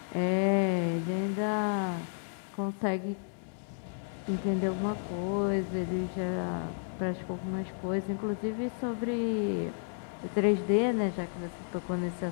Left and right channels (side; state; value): right; silent; 56 dB below the other